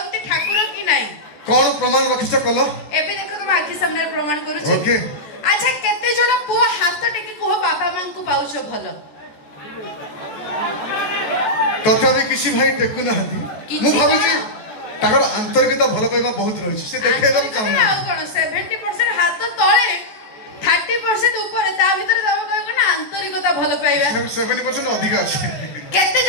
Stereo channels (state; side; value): late; right; 14 ms